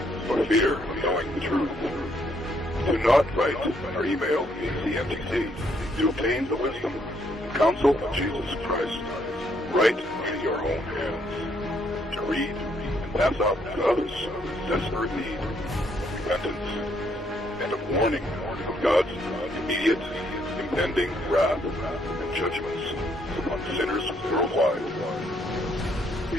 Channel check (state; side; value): normal; both; correlation 0.71